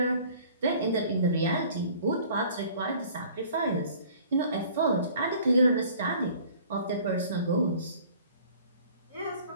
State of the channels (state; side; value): inverted; both; correlation -0.51